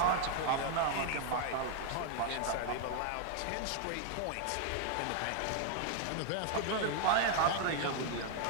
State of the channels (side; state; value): both; different; correlation 0.00